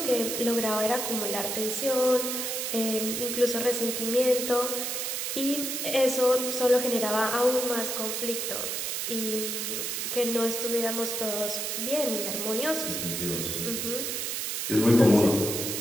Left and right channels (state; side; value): noise; right; hiss, 2 dB below the sound